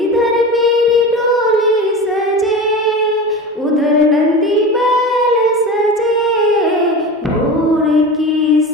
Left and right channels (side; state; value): both; normal; correlation 0.29